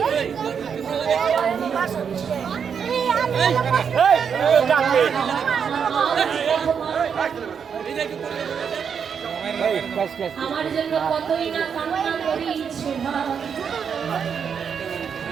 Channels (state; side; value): quieter; left; 7.0 dB